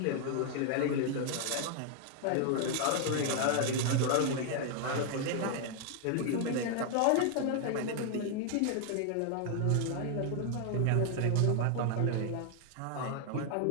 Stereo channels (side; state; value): both; different; correlation 0.00